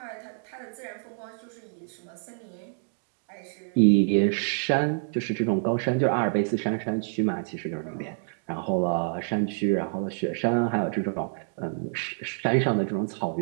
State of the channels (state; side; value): silent; left; digital silence